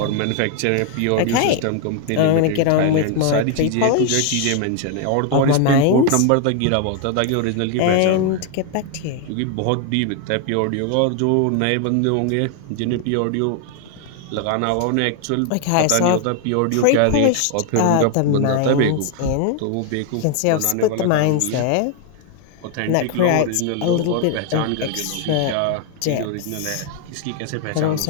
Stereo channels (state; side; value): different; both; correlation 0.01